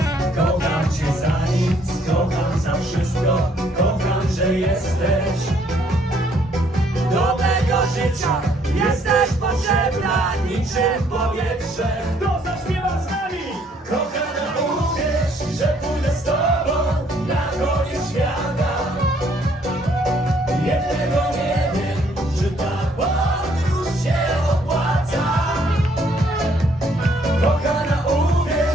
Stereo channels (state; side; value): normal; both; correlation 0.65